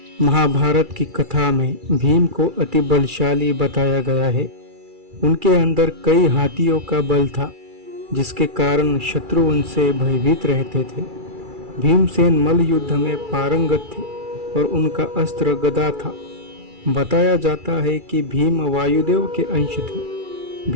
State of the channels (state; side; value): late; left; 2.3 ms